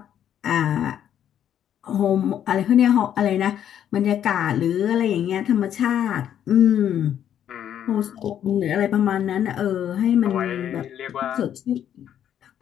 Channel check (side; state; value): right; quieter; 10.0 dB